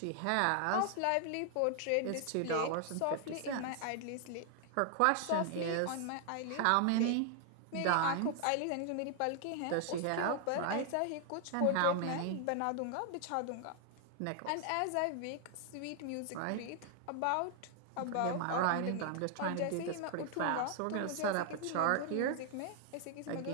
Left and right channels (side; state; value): both; different; correlation 0.00